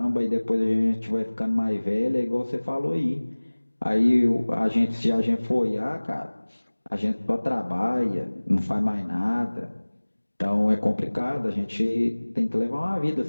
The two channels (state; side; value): inverted; both; correlation -1.00